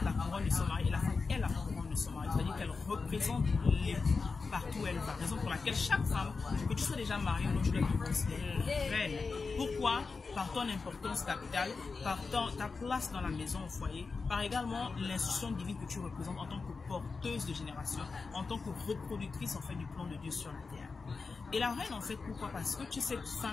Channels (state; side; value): quieter; right; 4.4 dB